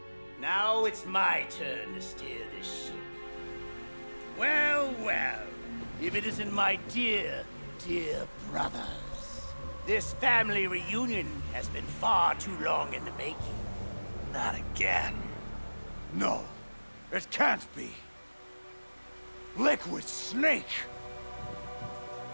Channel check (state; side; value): inverted; both; correlation -1.00